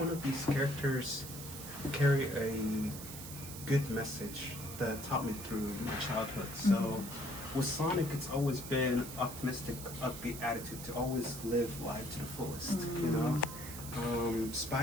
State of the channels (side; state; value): right; noise; hiss, 11 dB below the sound